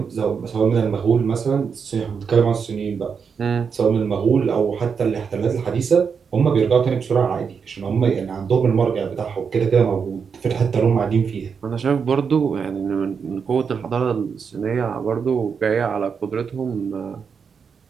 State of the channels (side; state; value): left; quieter; 6.2 dB